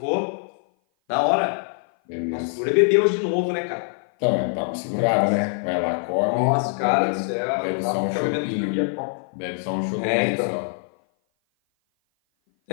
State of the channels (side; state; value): right; silent; 56 dB below the other